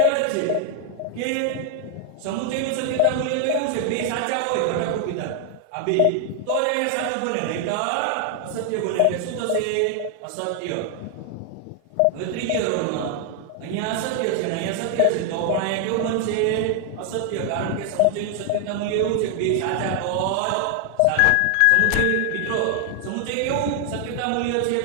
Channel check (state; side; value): different; both; correlation 0.00